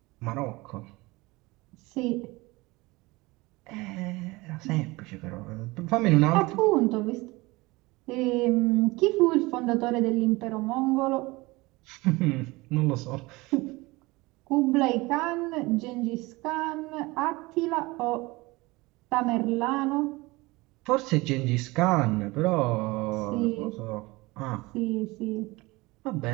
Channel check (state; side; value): quieter; left; 22.4 dB